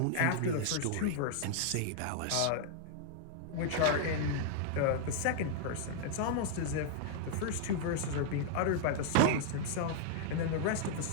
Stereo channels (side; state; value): both; different; correlation -0.01